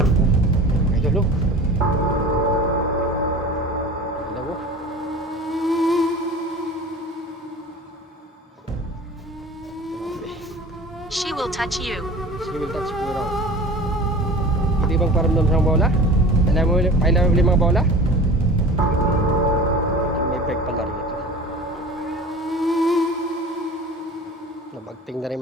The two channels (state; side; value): normal; both; correlation 0.39